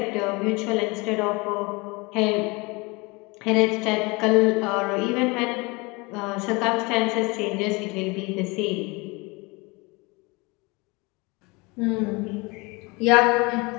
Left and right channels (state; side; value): quieter; right; 26.3 dB